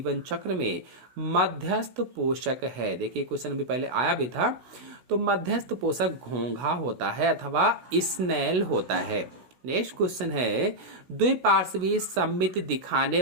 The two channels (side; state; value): left; late; 16 ms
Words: चक्र में मध्यस्थ पोषक है। देखिए क्वेश्चन अभी पहले आया भी था, तो मध्यस्थ पोषक घोंघा होता है अथवा स्नेल होता है। नेक्स्ट क्वेश्चन है द्विपार्श्वीय सममिति दिखाने